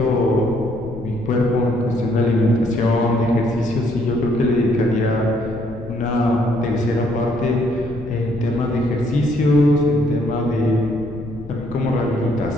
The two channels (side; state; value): left; noise; rumble, 15 dB below the sound